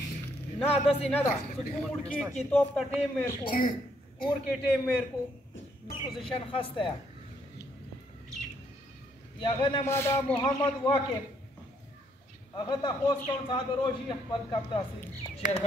نه دسې نه ده چې کوم ور کې توپ ته ټیم مېر کو کور کې ټیم مېر کو پوزیشن خسته یا غنه ما دا محمد واقع هغه ته خوښ کوم صاحب روشي خپل کپ تاسو شیر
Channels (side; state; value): both; normal; correlation 0.71